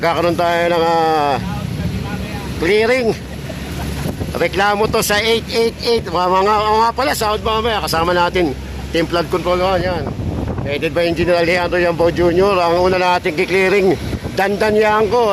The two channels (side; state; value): both; identical; correlation 1.00